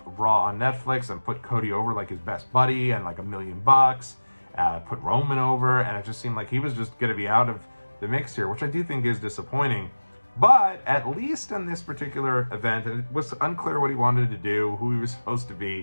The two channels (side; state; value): both; inverted; correlation -1.00